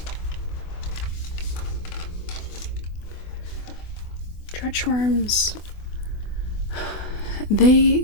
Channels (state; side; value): late; right; 24 ms